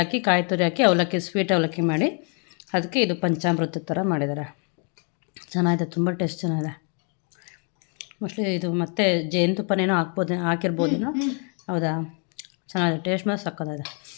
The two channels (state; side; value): quieter; right; 38.8 dB